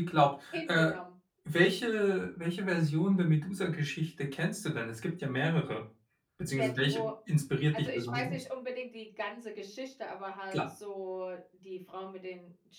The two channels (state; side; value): identical; both; correlation 1.00